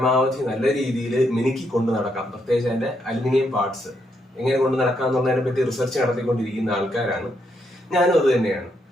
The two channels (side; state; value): both; normal; correlation 0.77